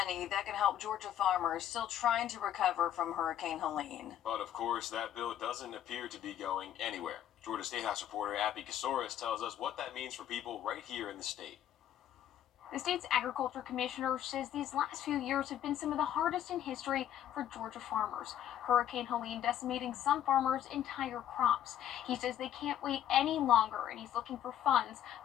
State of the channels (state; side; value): quieter; right; 10.9 dB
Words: that can help Georgia farmers still trying to recover from Hurricane Helene. But of course, that bill doesn't appear to be going anywhere. Georgia State House reporter Abby Kasoris tells us what that means for people right here in the state. The state's agriculture commissioner says these last few years have been some of the hardest in history for Georgia farmers. Hurricane Helene decimating some farmers' entire crops. He says they can't wait any longer, and he's looking for funds